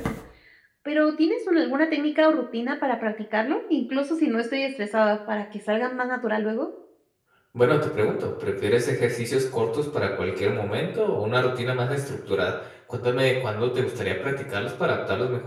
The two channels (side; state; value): both; identical; correlation 1.00